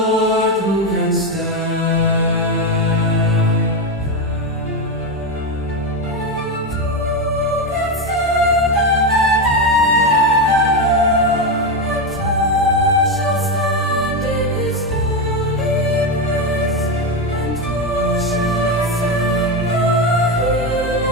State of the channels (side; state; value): both; normal; correlation 0.11